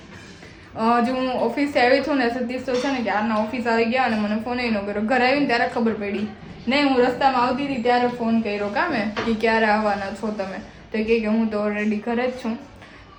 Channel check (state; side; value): identical; both; correlation 1.00